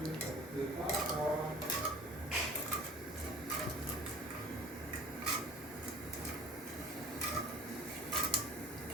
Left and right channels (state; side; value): normal; both; correlation 0.44